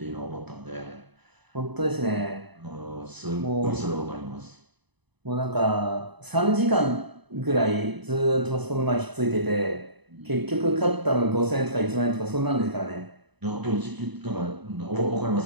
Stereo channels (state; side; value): late; left; 0.99 ms